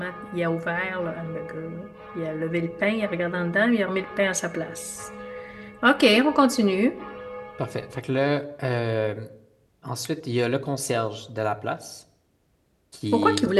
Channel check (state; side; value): identical; both; correlation 1.00